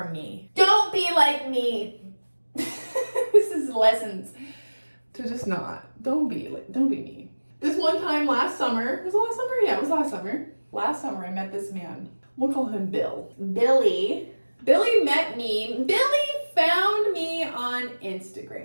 me. Don't be like me. This is lessons to just not. Don't be me. This one time last summer, was it last summer? Yeah, it was last summer. Last summer I met this man. We'll call him Bill. Billy met me. Billy found me on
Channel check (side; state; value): both; inverted; correlation -1.00